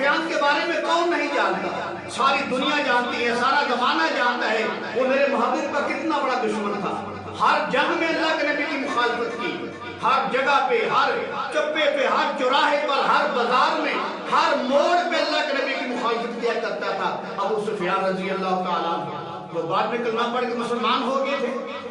کے بارے میں کون نہیں جانتا؟ ساری دنیا جانتی ہے، سارا زمانہ جانتا ہے وہ میرے محبوب کا کتنا بڑا دشمن تھا۔ ہر جنگ میں اللہ کے نبی کی مخالفت کی، ہر جگہ پہ، ہر چپے پہ، ہر چوراہے پر، ہر بازار میں، ہر موڑ پہ اللہ کے نبی کی مخالفت کیا کرتا تھا ابو سفیان رضی اللہ تعالیٰ عنہ۔ وہ بعد میں کلمہ پڑھ کے مسلمان ہو گئے تھے،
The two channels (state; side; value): identical; both; correlation 1.00